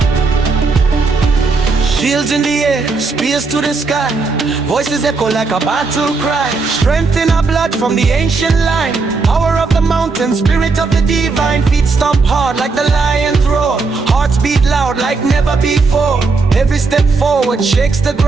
Shields in the air, spears to the sky. Voices echo like a battle cry. Strength in our blood from the ancient line. Power of the mountain, spirit of the divine. Feet stomp hard like the lion's roar. Hearts beat loud like never before. Every step forward shakes the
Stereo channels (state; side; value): quieter; left; 4.2 dB